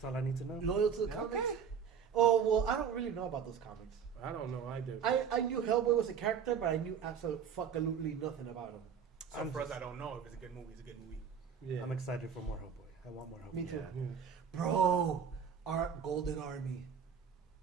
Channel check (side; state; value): left; quieter; 7.3 dB